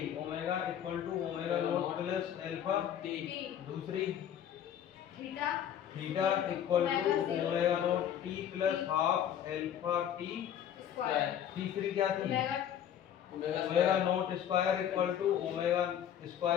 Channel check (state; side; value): quieter; right; 9.8 dB